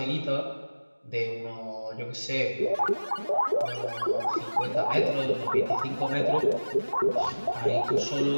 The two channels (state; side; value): inverted; both; correlation -1.00